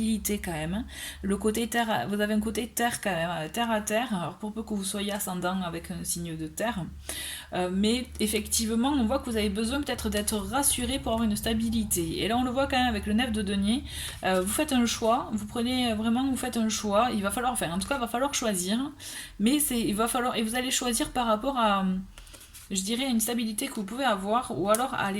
quand même. Le côté terre, vous avez un côté terre quand même, terre à terre, alors pour peu que vous soyez ascendant avec un signe de terre. Mais effectivement, on voit que vous avez besoin peut-être d'être rassuré pour avoir une stabilité. Et là, on le voit quand même avec le 9 de denier. Vous faites un choix, vous prenez vraiment, vous faites un choix. Il va falloir, enfin, en tout cas, il va falloir choisir. Mais il va falloir, et vous allez choisir par rapport à, je dirais, une stabilité que vous pouvez avoir, ou alors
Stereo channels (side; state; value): both; identical; correlation 1.00